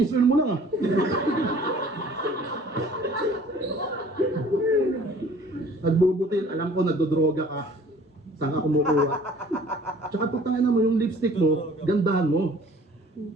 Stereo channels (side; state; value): both; normal; correlation 0.51